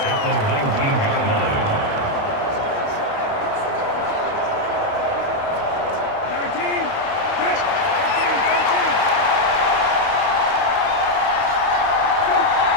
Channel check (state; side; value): late; right; 28 ms